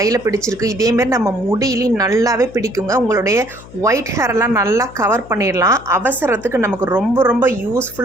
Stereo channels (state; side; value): noise; left; hum, 19 dB below the sound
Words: பிடிச்சிருக்கு. இதேமாரி நம்ம முடியிலையும் நல்லாவே பிடிக்குங்க. உங்களுடைய ஒயிட் ஹேரெல்லாம் நல்லா கவர் பண்ணிடலாம். அவசரத்துக்கு நமக்கு ரொம்ப ரொம்ப